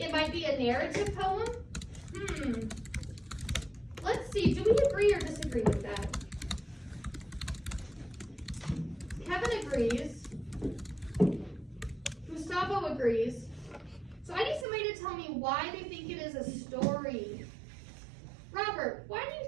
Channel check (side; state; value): left; drops out; at 14.7 s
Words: might be a narrative poem? Let's see, do we agree or disagree with that? Kevin agrees. Gustavo agrees. So I need somebody to tell me why they think it is a story. Robert, why do you